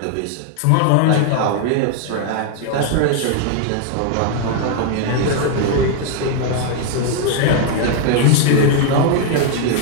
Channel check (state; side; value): different; both; correlation 0.00